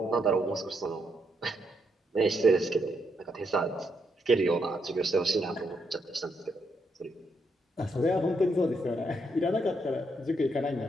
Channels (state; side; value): normal; both; correlation 0.78